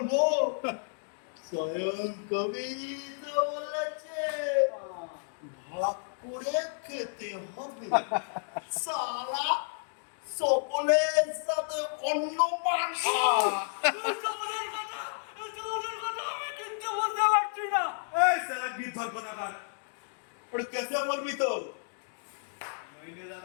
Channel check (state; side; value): silent; right; digital silence